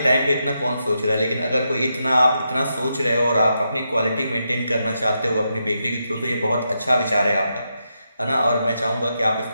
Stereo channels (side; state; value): both; inverted; correlation -0.84